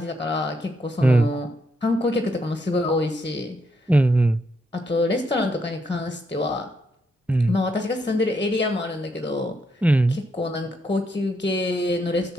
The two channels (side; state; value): both; normal; correlation 0.77